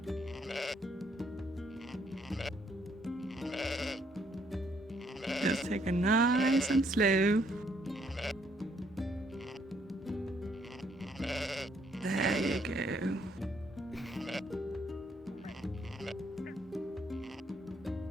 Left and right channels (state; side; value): normal; both; correlation 0.69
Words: Just take it nice and slow. There you go.